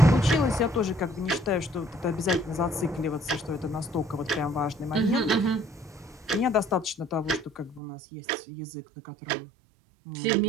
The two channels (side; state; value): left; drops out; at 7.8 s